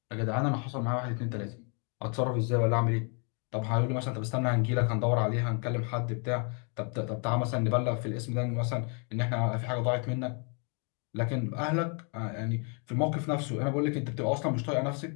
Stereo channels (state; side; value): quieter; right; 38.1 dB